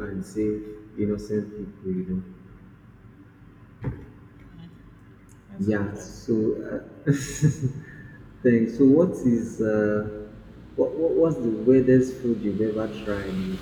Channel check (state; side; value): identical; both; correlation 1.00